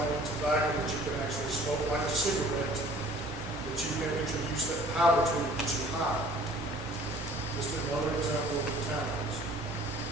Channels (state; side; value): normal; both; correlation 0.51